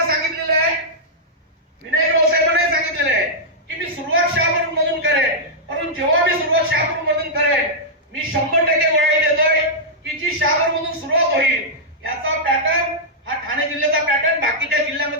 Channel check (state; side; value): normal; both; correlation -0.09